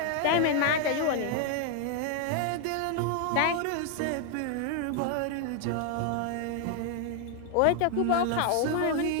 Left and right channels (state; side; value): different; both; correlation 0.00